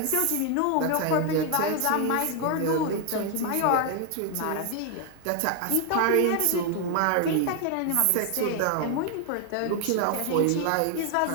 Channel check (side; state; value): both; different; correlation 0.00